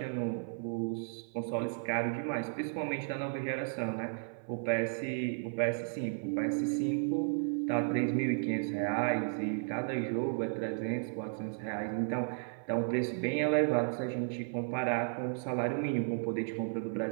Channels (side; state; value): left; silent; 55 dB below the other